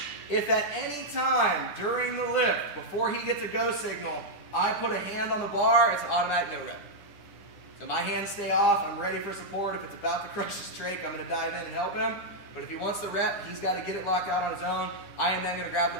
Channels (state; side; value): late; right; 9.9 ms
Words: If at any time during the lift, before he gets a go signal, I put a hand on the bar, it's an automatic no rep. So my hands stay off, I'm ready for support. If it's about to crush his trach, I'm gonna dive in and help him. But if he wants the rep, he's gotta get it locked out on his own. I am then gonna grab the